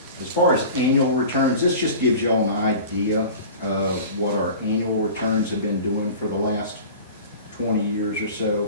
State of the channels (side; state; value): both; inverted; correlation -0.38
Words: As far as annual returns, this just gives you all an idea of what our annual returns have been doing for the last 20 years or so.